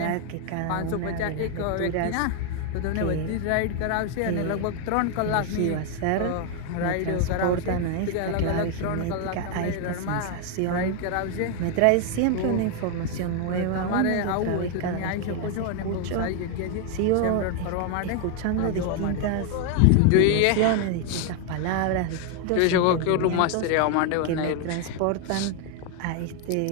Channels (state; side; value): different; both; correlation 0.01